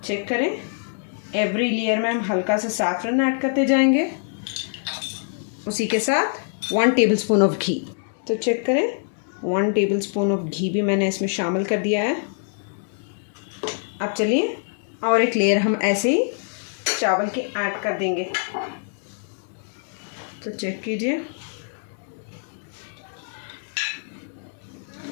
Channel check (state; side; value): silent; right; digital silence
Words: चेक करें, एवरी लेयर में हम हल्का सा सैफरन ऐड करते जाएंगे, उसी के साथ 1 टेबलस्पून ऑफ घी। तो चेक करें, 1 टेबलस्पून ऑफ घी भी मैंने इसमें शामिल कर दिया है। अब चलिए और एक लेयर हम ऐसे ही चावल की ऐड कर देंगे। तो चेक कीजिए,